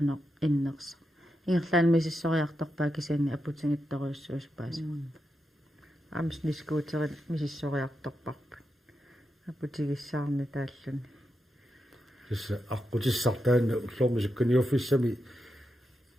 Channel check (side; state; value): both; normal; correlation 0.86